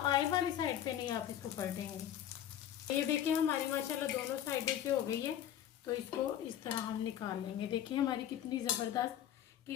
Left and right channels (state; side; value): quieter; right; 10.8 dB